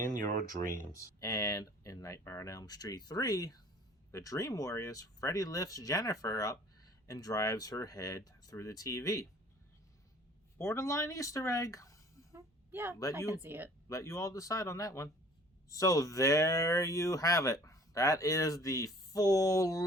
your dreams." And in Nightmare on Elm Street 3, the Dream Warriors, Freddy lifts Jennifer up and drives her head through the TV. Borderline Easter egg. Yeah, I can see it. Let you all decide on that one. So there you have it. That is the full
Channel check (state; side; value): normal; both; correlation 0.52